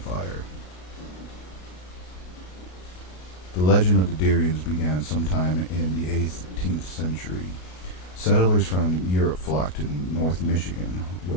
The legend of the Deerians began sometime in the 18th century. Settlers from Europe flocked to North Michigan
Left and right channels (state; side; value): late; right; 33 ms